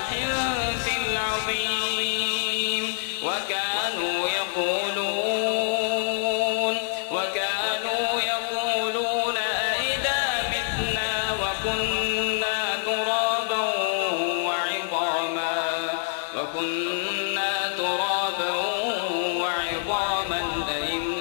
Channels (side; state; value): right; silent; digital silence